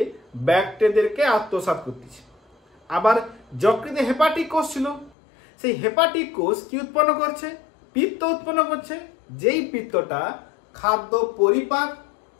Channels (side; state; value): right; drops out; at 5.1 s